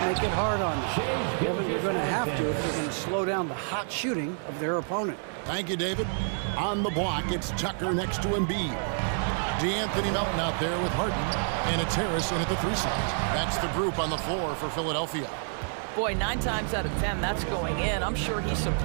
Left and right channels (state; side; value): silent; left; 59 dB below the other